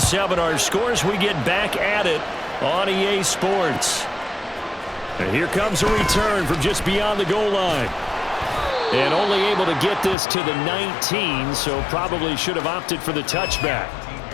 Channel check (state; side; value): drops out; right; at 10.2 s